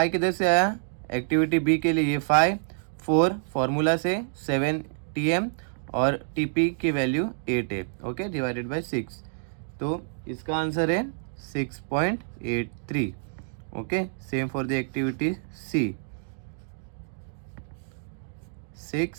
किधर से आया, एक्टिविटी B के लिए ये 5, 4 फॉर्मूला से, 7 TM और TP की वैल्यू 8 है। ओके, डिवाइडेड बाय 6, तो इसका आंसर है 6.83। Okay, same for the activity C, 6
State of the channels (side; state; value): left; silent; digital silence